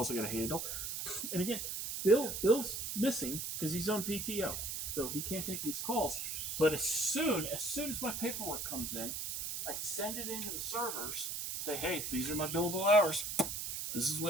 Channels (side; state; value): right; noise; hiss, 4 dB below the sound